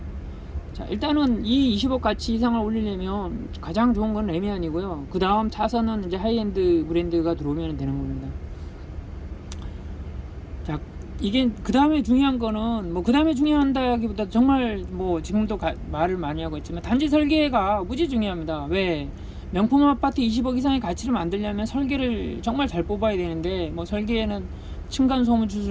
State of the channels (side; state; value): both; identical; correlation 1.00